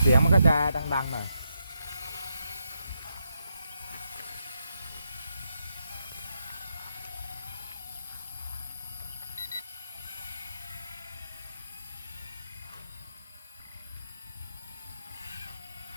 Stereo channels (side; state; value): both; inverted; correlation -0.82